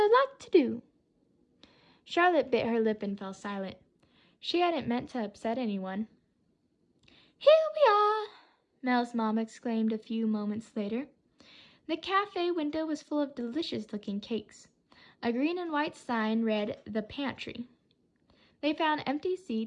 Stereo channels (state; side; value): identical; both; correlation 1.00